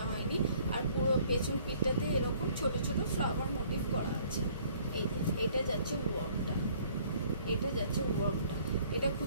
হয়নি। আর পুরো পেছন পিঠটাতে এরকম ছোট ছোট ফ্লাওয়ার মোটিভ করা আছে। এই যে এটা যাচ্ছে ওয়ার্কটা, এটা যাচ্ছে ওয়ার্কটা, এটা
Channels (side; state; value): both; inverted; correlation -0.59